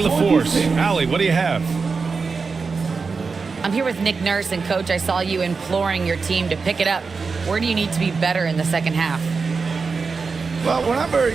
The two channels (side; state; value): left; quieter; 4.8 dB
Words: LaForce. Allie, what do you have? I'm here with Nick Nurse, and Coach, I saw you imploring your team to pick it up. Where do you need to be better in the second half? Well, we're not very